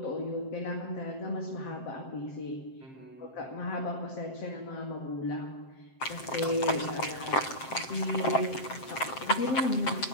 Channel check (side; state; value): right; late; 7.6 ms